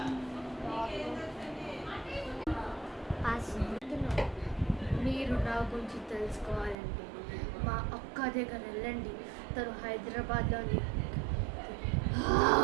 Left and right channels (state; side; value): drops out; left; at 6.8 s